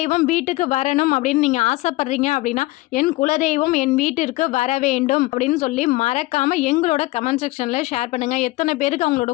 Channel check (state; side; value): quieter; right; 19.8 dB